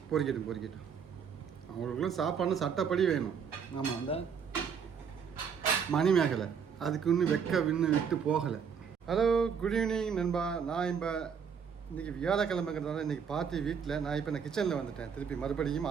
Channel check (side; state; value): left; quieter; 6.9 dB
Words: பொறிக்கட்டும். அவங்களுக்குலாம் சாப்பாடுன்னு சட்டப்படி வேணும். ஆமாம், அந்த மணிமேகலை அதுக்கு இன்னும் விட்டு போகலை. ஹலோ, குட் ஈவினிங் நண்பா. நான் இப்போ இன்றைக்கி வியாழக்கிழமைங்கிறதுனால இன்றைக்கி பார்ட்டி வீட்டில் நான் இப்போ கிச்சனில் வந்துட்டேன். திருப்பி மறுபடியும்